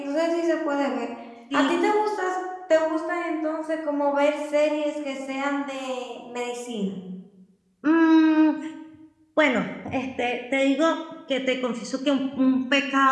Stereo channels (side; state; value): both; identical; correlation 1.00